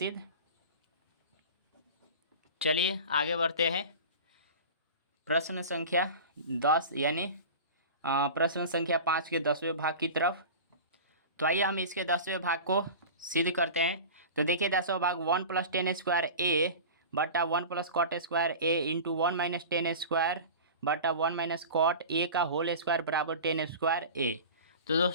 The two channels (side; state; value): both; inverted; correlation -0.34